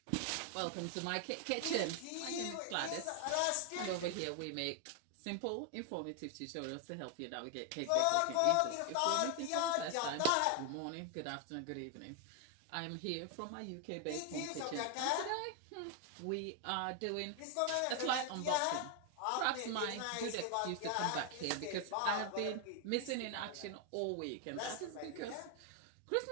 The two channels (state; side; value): different; both; correlation 0.00